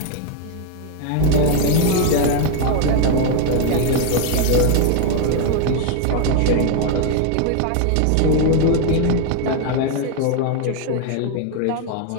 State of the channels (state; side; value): different; both; correlation 0.01